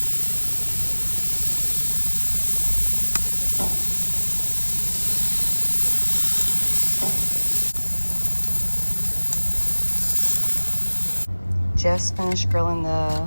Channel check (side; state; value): both; inverted; correlation -1.00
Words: Just finished grilling the